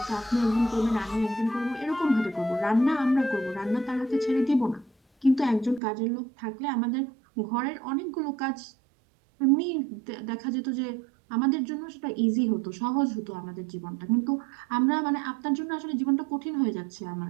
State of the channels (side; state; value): left; drops out; at 5.8 s